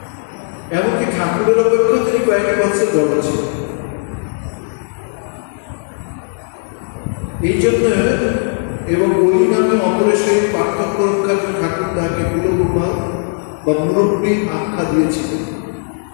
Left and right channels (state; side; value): silent; right; 68 dB below the other